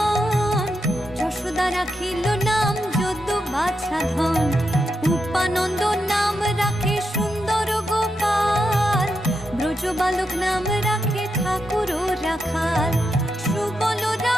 যশোদা রাখিল নাম যদু বাছা ধন, উপানন্দ নাম রাখে সুন্দর গোপাল, ব্রজ বালক নাম রাখে ঠাকুর রাখাল, সুবল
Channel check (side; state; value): both; normal; correlation 0.85